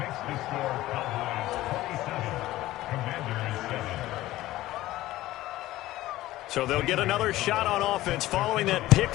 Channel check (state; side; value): quieter; right; 16.2 dB